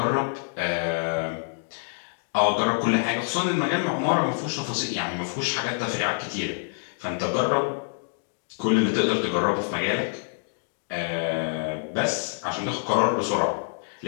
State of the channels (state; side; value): silent; right; digital silence